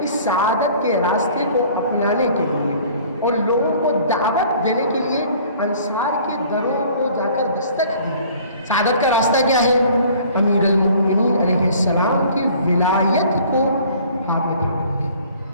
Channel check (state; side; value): inverted; both; correlation -0.52